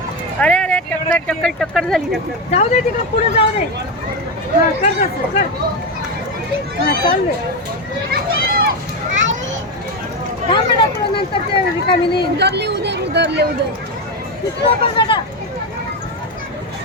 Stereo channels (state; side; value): normal; both; correlation 0.12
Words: अरे अरे टक्कर टक्कर टक्कर झाली. टक्कर जाऊ दे तिकडं पुढे जाऊ दे. हां कर तसं कर. हां चाल दे. थांब बेटा तुला नंतर ते रिकामी नाही. उधरले उधर तिकडं पण बेटा.